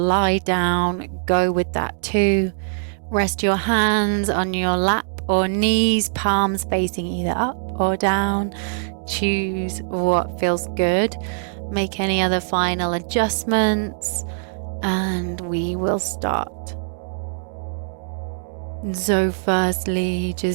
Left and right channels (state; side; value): silent; left; digital silence